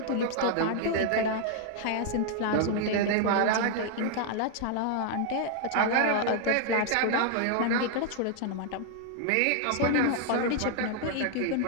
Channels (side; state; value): both; different; correlation 0.00